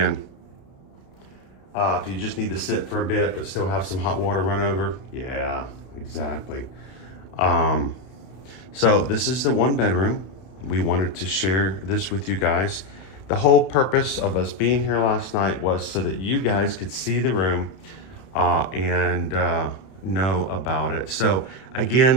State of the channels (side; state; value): right; late; 32 ms